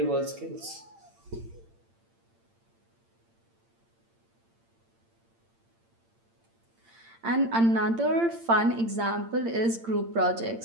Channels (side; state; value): left; late; 8.8 ms